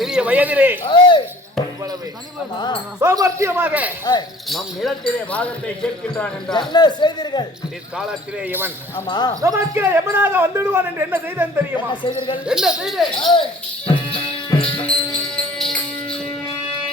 வயதிலே இவ்வளவு சாமர்த்தியமாக நம் நிலத்திலே பாகத்தை கேட்கின்றான் என்றால் என்ன செய்தீர்கள்? இக்காலத்திலே இவன் ஆமா. நமக்கு எவனாக வந்துடுவான் என்று என்ன செய்தான் தெரியுமா? என்ன செய்தீர்கள்? என்ன செய்தேன்?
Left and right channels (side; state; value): both; normal; correlation 0.51